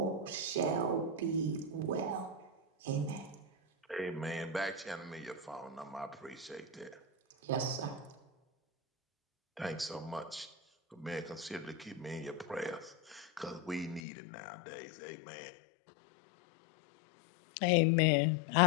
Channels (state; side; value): drops out; right; at 14.0 s